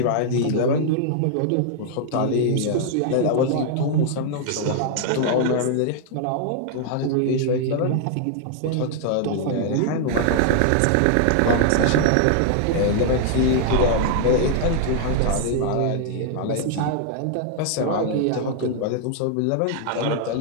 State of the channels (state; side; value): different; both; correlation 0.00